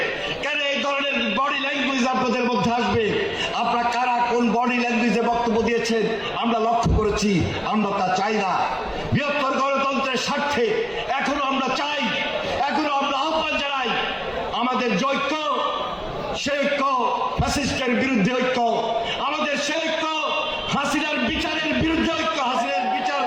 কেন এই ধরনের বডি ল্যাঙ্গুয়েজ আপনাদের মধ্যে আসবে? আপনারা কারা কোন বডি ল্যাঙ্গুয়েজে বক্তব্য দিয়েছেন আমরা লক্ষ্য করেছি। আমরা তা চাই না। বৃহত্তর গণতন্ত্রের স্বার্থে এখনো আমরা চাই, এখনো আমরা আহ্বান জানাই, আমাদের যে ঐক্য, সে ঐক্য ফ্যাসিস্টের বিরুদ্ধে ঐক্য, আমাদের সে ঐক্য হাসিনার বিচারের বিরুদ্ধে ঐক্য, হাসিনার বিচার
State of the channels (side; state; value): both; identical; correlation 1.00